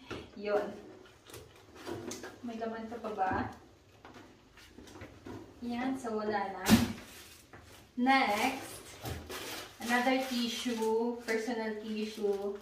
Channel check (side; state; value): both; identical; correlation 1.00